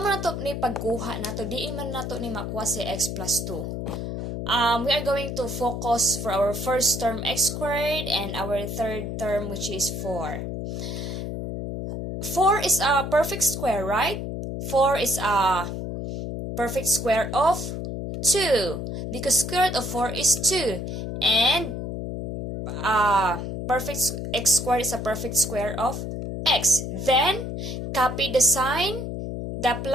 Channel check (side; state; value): left; noise; hum, 5 dB below the sound